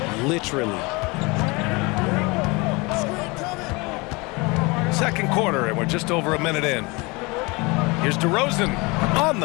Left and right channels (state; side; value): quieter; right; 26.1 dB